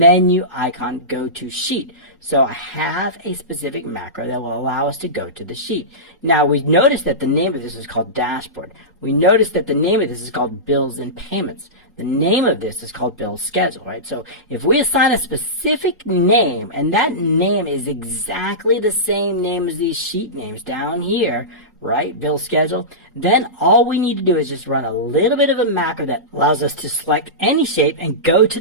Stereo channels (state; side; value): normal; both; correlation -0.18